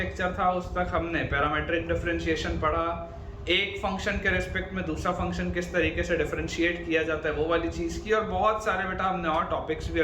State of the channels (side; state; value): both; identical; correlation 1.00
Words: था उस तक हमने पैरामीट्रिक डिफरेंशिएशन पढ़ा, एक फंक्शन के रिस्पेक्ट में दूसरा फंक्शन किस तरीके से डिफरेंशिएट किया जाता है वो वाली चीज़ की, और बहुत सारे बेटा हमने और टॉपिक्स भी